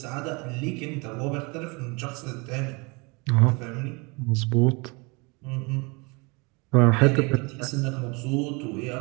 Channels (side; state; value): left; quieter; 28.7 dB